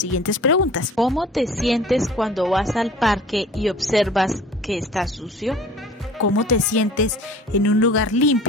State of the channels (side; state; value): both; normal; correlation 0.45